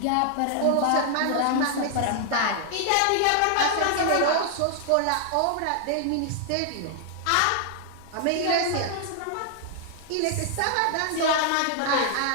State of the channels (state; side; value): different; both; correlation 0.00